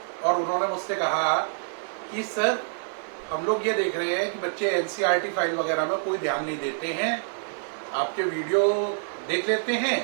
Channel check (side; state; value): left; silent; digital silence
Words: और उन्होंने मुझसे कहा कि सर, हम लोग ये देख रहे हैं कि बच्चे एनसीईआरटी फाइल वगैरह में कोई ध्यान नहीं देते हैं, आपके वीडियो देख लेते